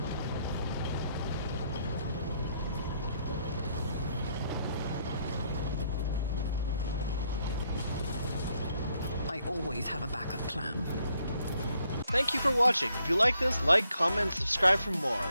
I always have a backup plan. Thank you for watching. If you like this, like, comment, and subscribe for more,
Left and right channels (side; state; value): both; inverted; correlation -0.73